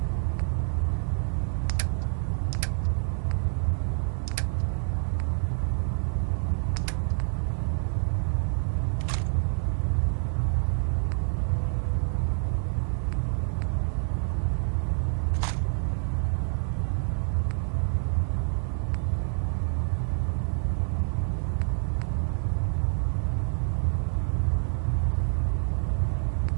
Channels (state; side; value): silent; left; 57 dB below the other